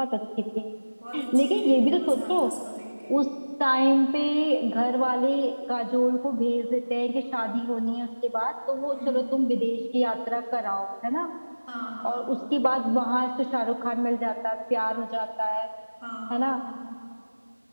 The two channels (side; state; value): both; inverted; correlation -1.00